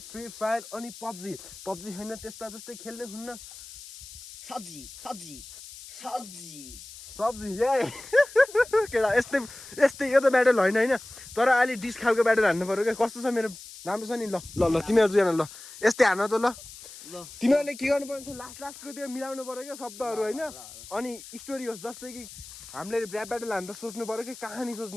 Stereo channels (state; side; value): noise; left; hiss, 15 dB below the sound